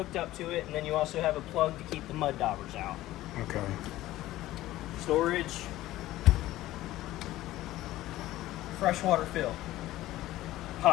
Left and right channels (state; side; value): quieter; right; 15.8 dB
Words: up to it. And then you also have a plug to keep the mud daubers out. Okay. Storage. Freshwater fill.